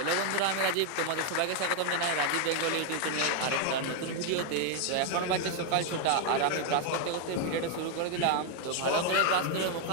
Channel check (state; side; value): different; both; correlation 0.01